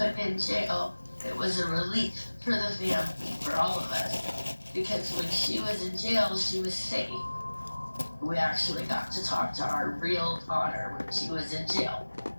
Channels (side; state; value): both; inverted; correlation -1.00